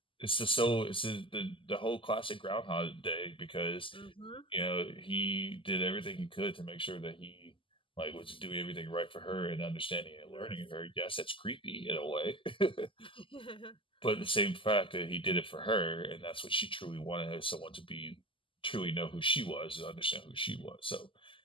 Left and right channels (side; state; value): right; late; 0.25 ms